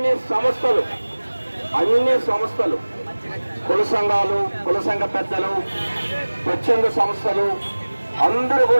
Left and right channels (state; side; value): inverted; both; correlation -1.00